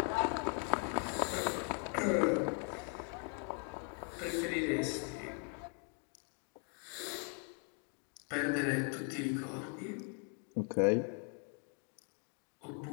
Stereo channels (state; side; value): quieter; right; 39.3 dB